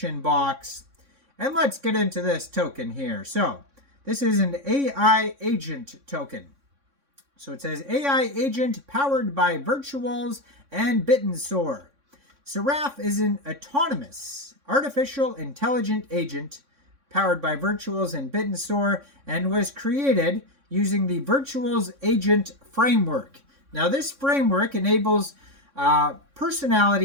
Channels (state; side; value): late; left; 3.6 ms